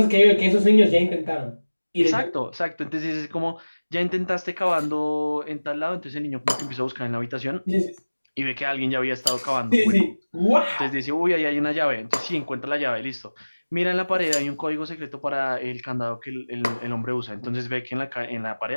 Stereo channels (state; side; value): inverted; both; correlation -1.00